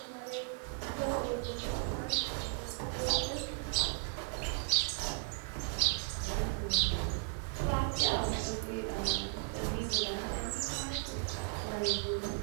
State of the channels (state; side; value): silent; left; 54 dB below the other